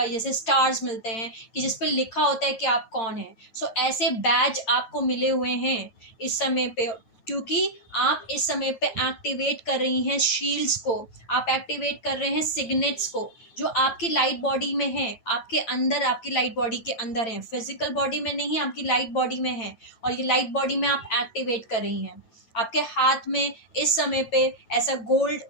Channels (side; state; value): right; late; 9.2 ms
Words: जैसे स्टार्स मिलते हैं कि जिस पे लिखा होता है कि आप कौन है। सो ऐसे बैज आपको मिले हुए हैं इस समय पे, क्योंकि आप इस समय पे एक्टिवेट कर रही हैं शील्ड्स को, आप एक्टिवेट कर रहे हैं सिग्नेट्स को जो आपकी लाइट बॉडी में है, आपके अंदर, आपकी लाइट बॉडी के अंदर है, फिजिकल बॉडी में नहीं, आपकी लाइट बॉडी में है, और ये लाइट बॉडी में आप एक्टिवेट कर रही हैं। आपके हाथ में इस समय पे ऐसा गोल्ड